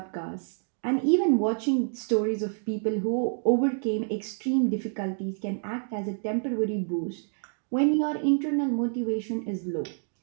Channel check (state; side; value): silent; left; 56 dB below the other